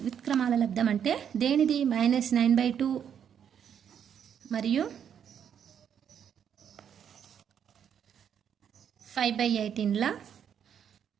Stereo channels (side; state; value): left; quieter; 8.5 dB